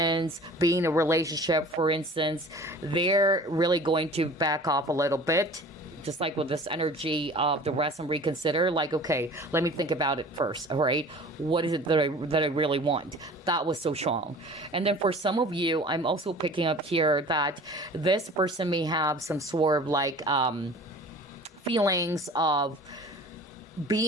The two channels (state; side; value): normal; both; correlation 0.43